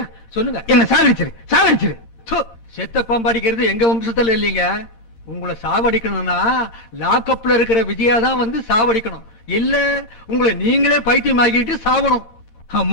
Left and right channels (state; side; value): late; right; 13 ms